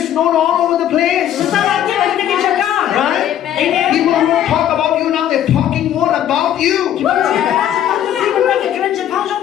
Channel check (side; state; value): right; quieter; 10.9 dB